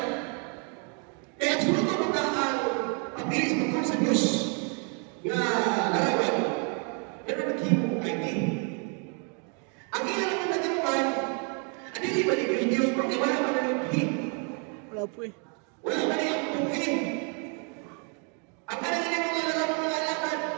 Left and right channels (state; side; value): quieter; left; 38.1 dB